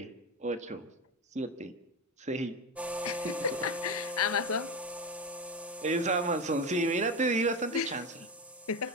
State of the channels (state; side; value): normal; both; correlation 0.18